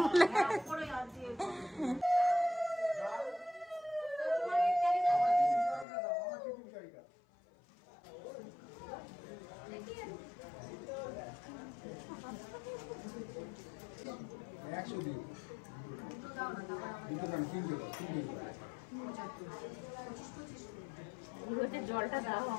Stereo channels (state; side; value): drops out; right; at 5.9 s